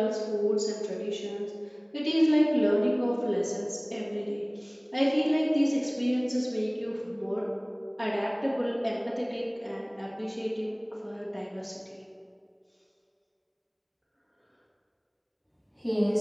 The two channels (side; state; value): both; identical; correlation 1.00